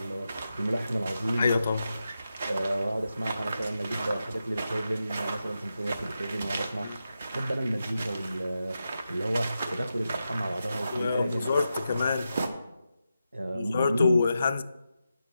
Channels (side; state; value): both; inverted; correlation -0.89